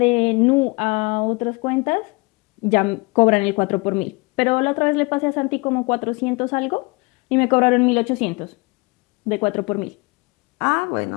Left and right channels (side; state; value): right; quieter; 27.6 dB